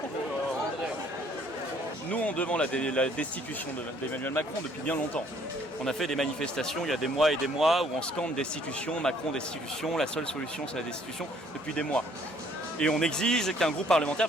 bien. Nous, on demande la destitution d'Emmanuel Macron depuis bien longtemps. On a fait des manifestations il y a des mois et des mois où on scande destitution, Macron destitution, la seule solution c'est la destitution depuis des mois. Et on exige qu'un groupe parlementaire,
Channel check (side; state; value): both; normal; correlation 0.62